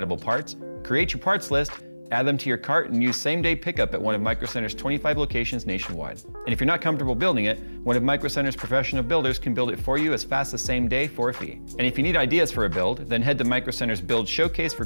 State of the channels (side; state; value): both; inverted; correlation -1.00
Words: parts, create your parts list, add them to your cart, and use same-day pickup at one of Micro Center's 25 locations nationwide. And if you're not comfortable building it, one of Micro Center's professional builders can build it for you as fast as same day for a fee. And if you need ideas for a build, then head to Micro Center's Build Showcase for